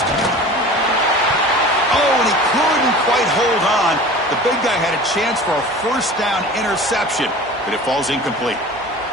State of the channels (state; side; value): normal; both; correlation 0.39